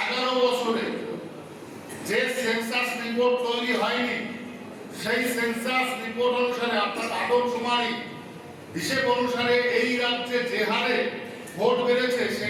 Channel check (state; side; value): identical; both; correlation 1.00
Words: 11 বছরে যে সেন্সাস রিপোর্ট তৈরি হয়নি, সেই সেন্সাস রিপোর্ট অনুসারে, অর্থাৎ আদমশুমারি হিসেব অনুসারে এই রাজ্যে যে হারে ভোট বেড়েছে,